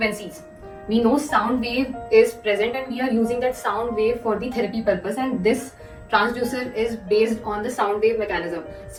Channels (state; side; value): identical; both; correlation 1.00